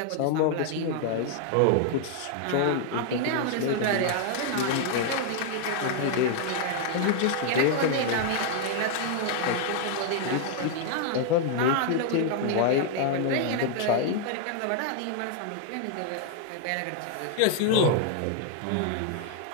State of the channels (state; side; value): different; both; correlation 0.00